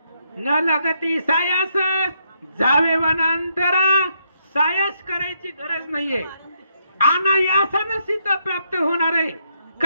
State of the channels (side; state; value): both; inverted; correlation -0.76